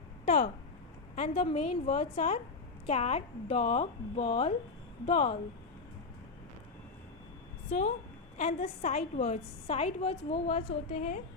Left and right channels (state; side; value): quieter; right; 4.2 dB